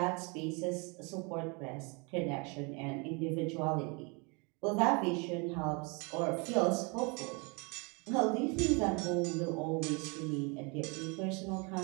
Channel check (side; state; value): left; quieter; 31.0 dB